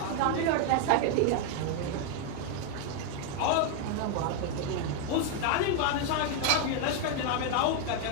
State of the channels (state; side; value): different; both; correlation 0.00